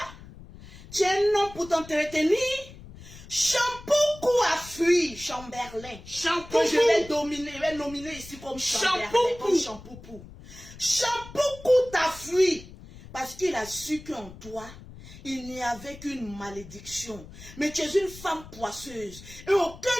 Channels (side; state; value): left; noise; rumble, 17 dB below the sound